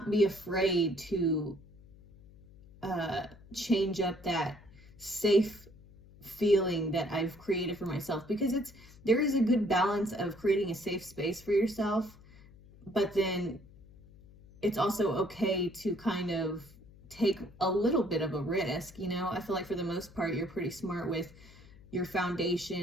be afraid to change up that safe feeling that I've created for myself, because there is a good balance of creating a safe space for yourself, but then it's also okay to kind of take a little bit of a risk. I feel like for the most part, you're pretty smart with your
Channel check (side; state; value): left; noise; hum, 22 dB below the sound